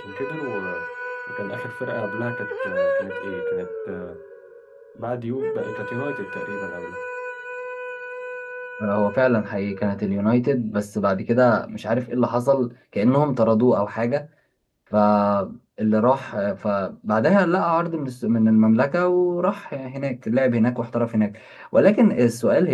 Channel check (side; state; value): both; identical; correlation 1.00